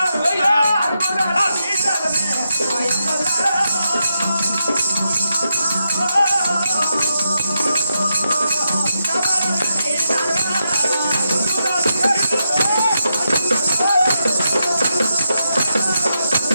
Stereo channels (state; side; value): inverted; both; correlation -0.85